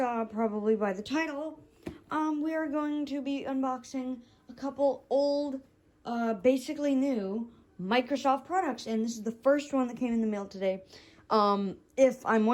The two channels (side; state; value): both; identical; correlation 1.00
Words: probably by the title, we are going to be unboxing a couple old, basically new Microsoft products, and this is the first one that came in the mail today. If I'm